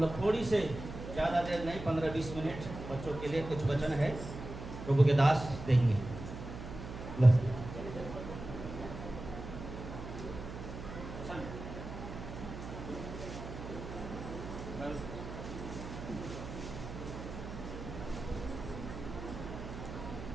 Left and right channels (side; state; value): right; noise; hum, 9 dB below the sound